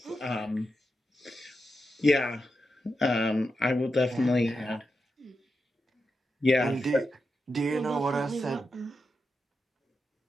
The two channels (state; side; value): normal; both; correlation 0.87